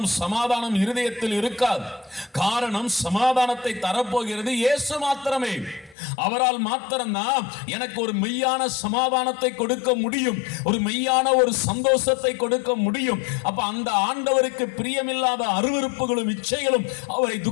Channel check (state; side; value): drops out; right; at 6.0 s